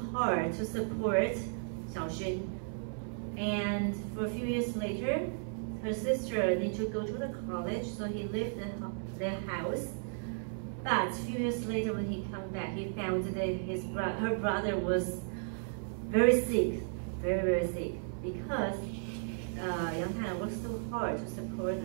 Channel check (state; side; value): silent; left; 55 dB below the other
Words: hard to support Xiaoxun, and for a few years later, her sister needed to go to the college, so he left their house. But a few years later, when he came back, he found that her brother was very sick, very, very sick, because Yang Tailang worked so hard to support